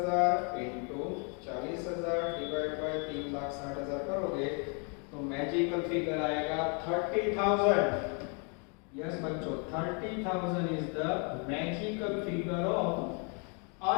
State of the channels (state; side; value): quieter; right; 36.9 dB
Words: into 40,000 डिवाइड बाय 3,60,000 करोगे तो मैजिकल फिगर आएगा 30,000। यस बच्चों 30,000 is the magical figure of